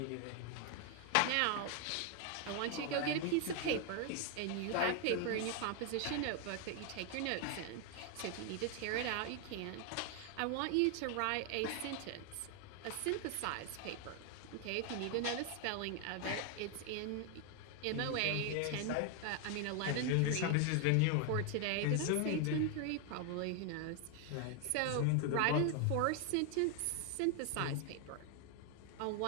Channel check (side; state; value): both; different; correlation 0.00